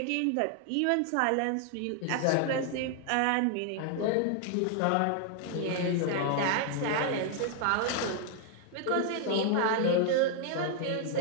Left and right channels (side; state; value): both; different; correlation 0.00